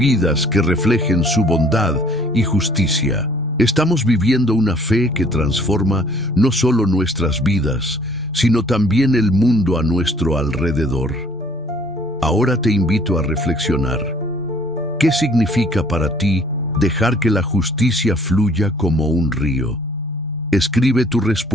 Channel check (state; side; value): normal; both; correlation 0.58